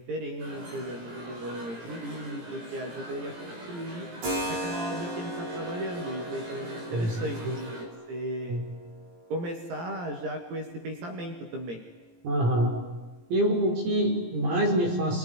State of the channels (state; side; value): late; left; 17 ms